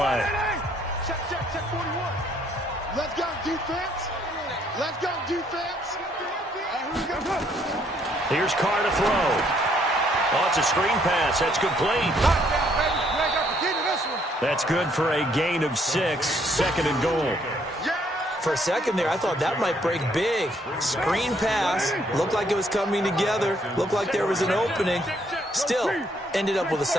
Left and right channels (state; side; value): normal; both; correlation 0.68